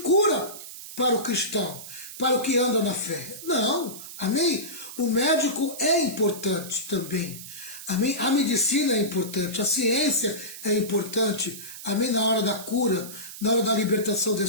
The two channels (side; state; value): right; noise; hiss, 12 dB below the sound